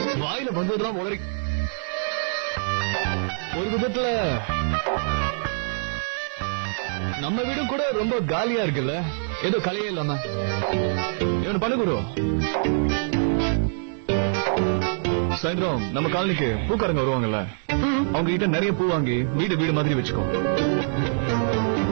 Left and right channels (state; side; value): silent; left; digital silence